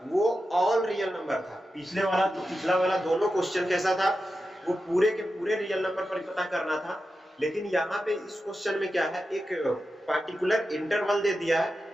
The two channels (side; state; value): both; normal; correlation 0.91